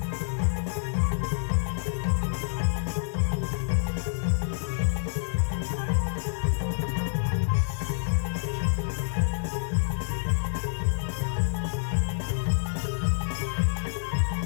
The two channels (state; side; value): silent; right; digital silence